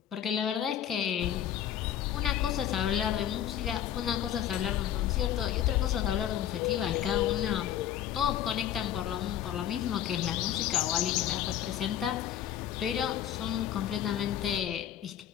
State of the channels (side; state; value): right; quieter; 10.8 dB